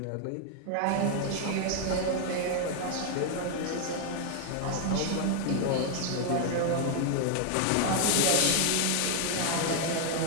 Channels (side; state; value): both; different; correlation 0.00